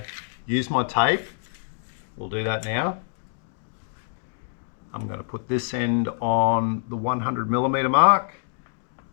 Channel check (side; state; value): right; silent; digital silence